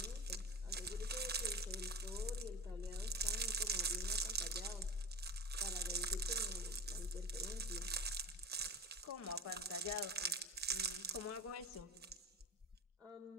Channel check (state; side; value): normal; both; correlation 0.28